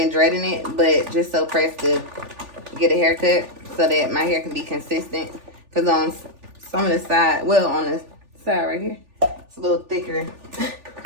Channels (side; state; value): left; late; 3.4 ms